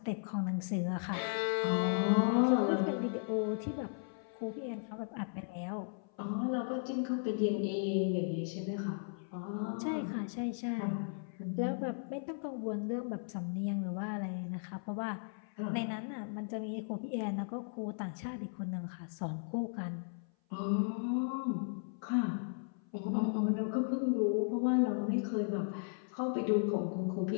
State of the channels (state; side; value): silent; right; 54 dB below the other